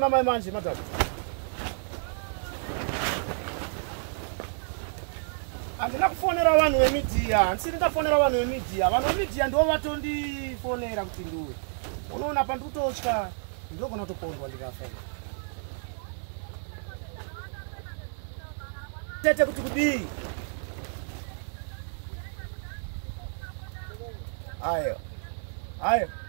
mai manje madam handina kufonera vanhu vemidiya handisiri ndafonera vanhu vemidiya vanhu vemidiya ndo vatondifonera kuti ndiwe unoona pandikutotya ndogona kutokondwa ndikafa tete kuti kudii ayo aiwa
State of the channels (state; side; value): silent; left; digital silence